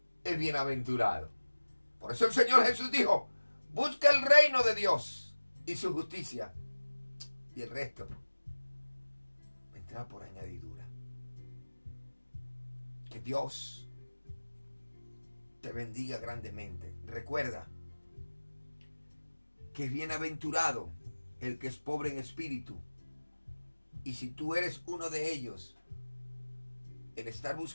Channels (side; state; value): both; inverted; correlation -1.00